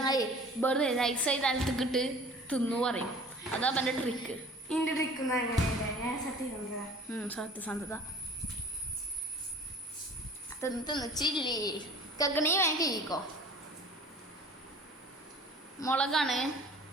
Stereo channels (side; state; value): both; normal; correlation 0.46